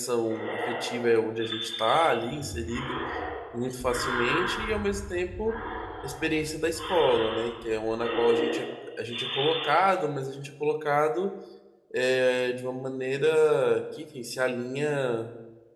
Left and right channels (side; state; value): both; identical; correlation 1.00